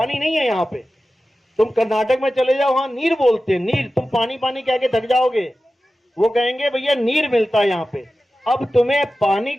नहीं है यहाँ पे। तुम कर्नाटक में चले जाओ, वहां नीर बोलते हैं, नीर। तुम पानी पानी कह के थक जाओगे, वो कहेंगे भैया नीर मिलता है यहाँ पे। अब तुम्हें पानी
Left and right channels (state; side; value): normal; both; correlation 0.94